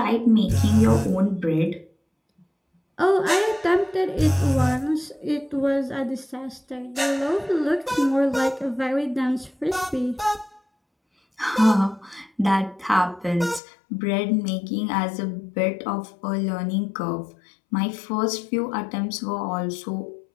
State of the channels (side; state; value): right; drops out; at 13.6 s